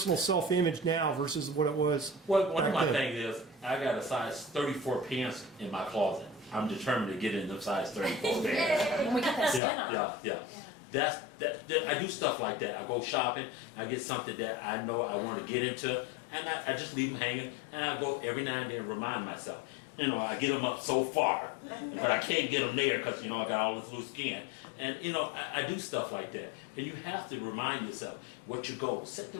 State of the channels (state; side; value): drops out; right; at 9.6 s